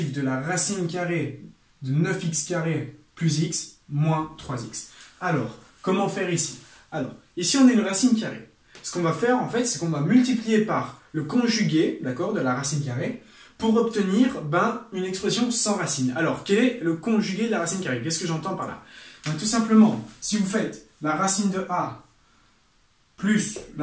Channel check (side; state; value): both; identical; correlation 1.00